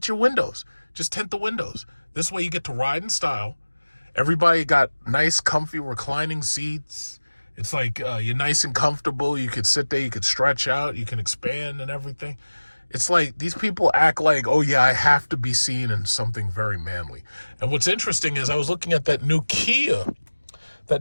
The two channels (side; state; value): both; inverted; correlation -1.00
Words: your windows. Just tint the windows. This way you get to ride in style. Everybody got nice, comfy, reclining seats. It's like you're nice and comfortable. You could sit there. You could stretch out. You can expand and everything. It's like these people act like, oh, yeah, I have to be seen in something very manly. And what's interesting is I was looking at that new Kia